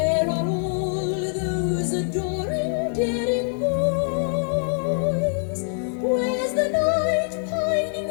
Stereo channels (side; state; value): right; silent; 58 dB below the other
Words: are all those adoring, daring boys? Where's the knight